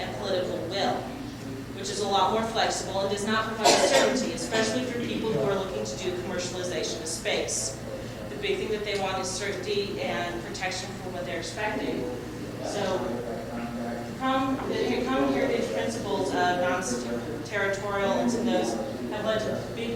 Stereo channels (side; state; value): both; identical; correlation 1.00